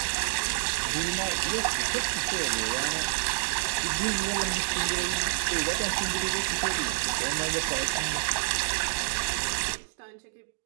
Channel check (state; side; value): silent; left; digital silence